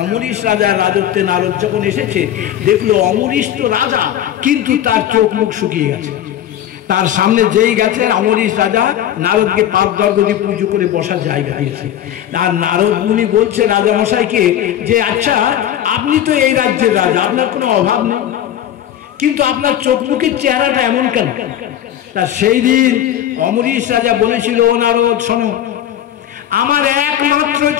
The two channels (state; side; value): quieter; right; 11.2 dB